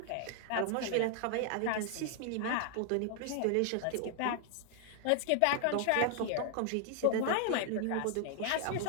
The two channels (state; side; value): different; both; correlation 0.00